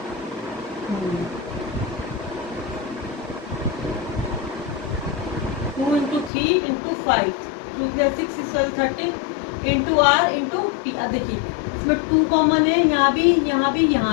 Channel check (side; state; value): right; drops out; at 6.3 s